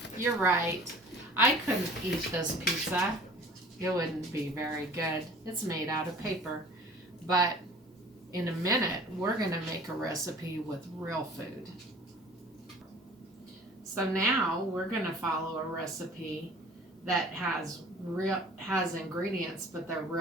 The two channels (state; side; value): normal; both; correlation 0.47